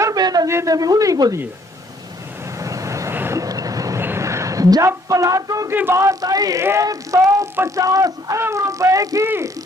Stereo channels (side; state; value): both; normal; correlation 0.64